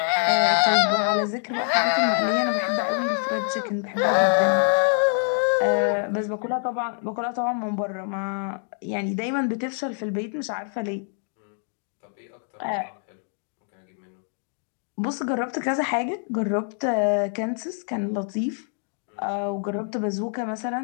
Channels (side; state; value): right; silent; 56 dB below the other